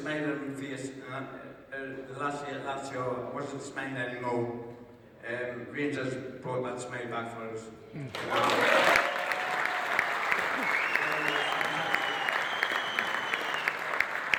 on my face, and the last year at Lazio, I wasn't smiling anymore. Rangers brought that smile back for us.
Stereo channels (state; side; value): identical; both; correlation 1.00